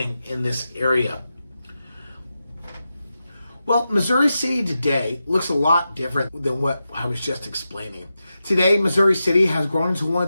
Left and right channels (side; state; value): both; inverted; correlation -0.90